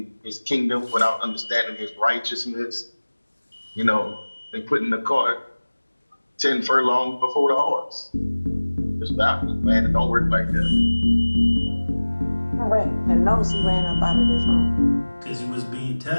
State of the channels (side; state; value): both; inverted; correlation -1.00